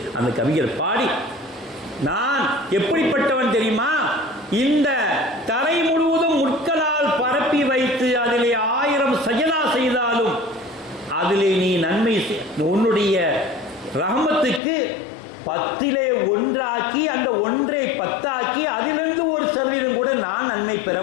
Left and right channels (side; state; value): right; drops out; at 14.6 s